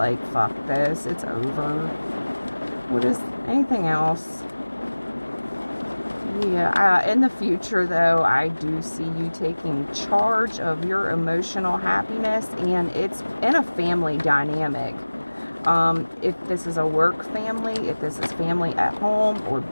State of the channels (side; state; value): both; inverted; correlation -1.00